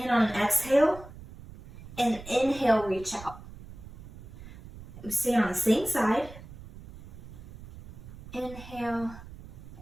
on an exhale and inhale, reach out. Stay on the same side. Inhale,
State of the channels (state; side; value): noise; right; rumble, 15 dB below the sound